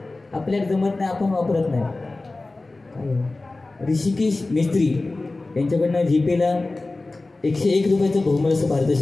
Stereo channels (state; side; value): quieter; right; 3.2 dB